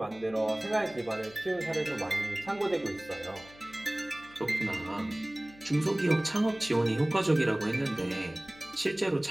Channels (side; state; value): left; noise; hum, 23 dB below the sound